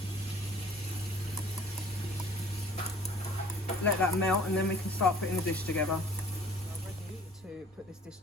Let that melt, and then we can start putting the dish together. I'm ready to put this dish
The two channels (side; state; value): both; normal; correlation 0.51